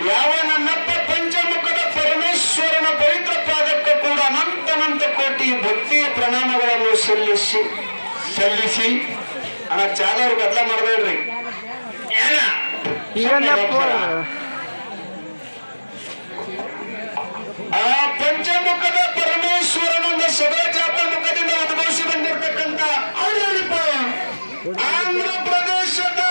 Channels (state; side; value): inverted; both; correlation -1.00